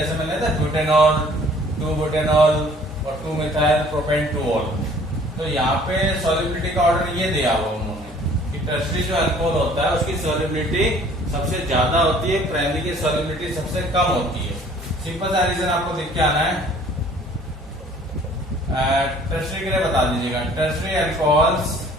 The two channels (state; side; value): normal; both; correlation 0.54